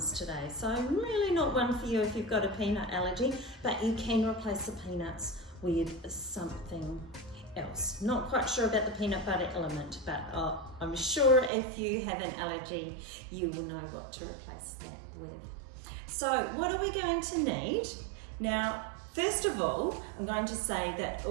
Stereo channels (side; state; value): left; drops out; at 11.5 s